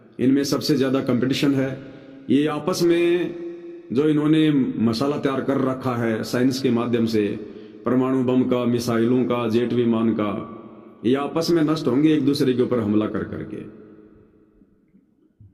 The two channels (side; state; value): both; identical; correlation 1.00